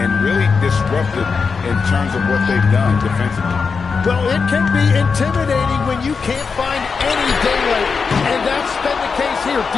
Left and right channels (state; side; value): quieter; right; 5.2 dB